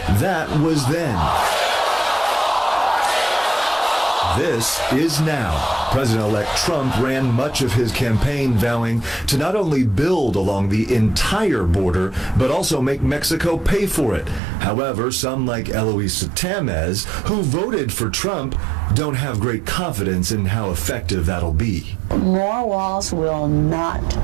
That was then. This is now. President-elect Trump ran much of his campaign vowing to not only build along the entire border, but also make Mexico pay for it. However, some like Eloisa Tamez, who voted for Trump, don't have great confidence in how effective that'll be. More walls will not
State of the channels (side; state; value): left; drops out; at 14.4 s